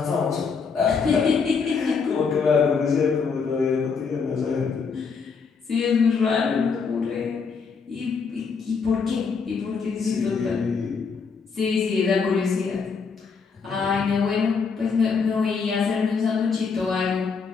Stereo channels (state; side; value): quieter; right; 5.4 dB